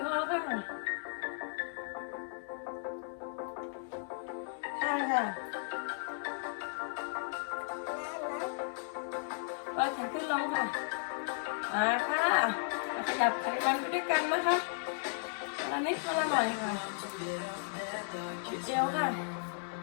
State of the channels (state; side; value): silent; right; digital silence